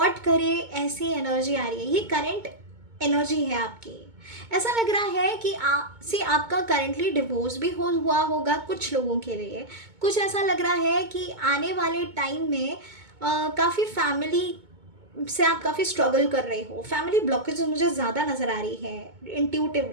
करे। ऐसी एनर्जी आ रही है, ये करेंट एनर्जी है आपकी। ऐसा लग रहा है कि आपका करंटली डिवोर्स भी हुआ होगा कुछ लोगों के लिए। कुछ ऐसा लग रहा है कि आने वाले टाइम में काफ़ी फैमिली से आप काफ़ी स्ट्रगल कर रहे हो। फैमिली ब्लॉकेज मुझे ज़्यादा नज़र आ रही है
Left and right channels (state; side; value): late; left; 2.2 ms